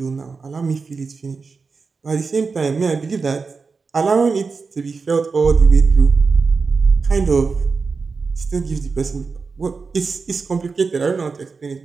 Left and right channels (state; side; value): quieter; left; 4.7 dB